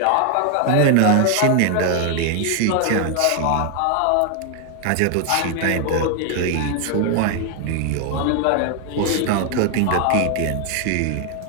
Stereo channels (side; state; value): both; different; correlation 0.00